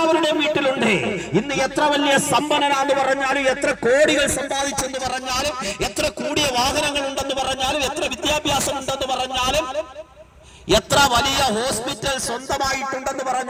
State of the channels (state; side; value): identical; both; correlation 1.00